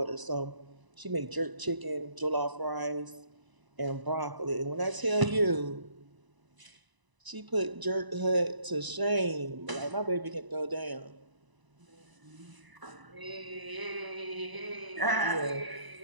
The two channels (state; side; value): late; left; 1.0 ms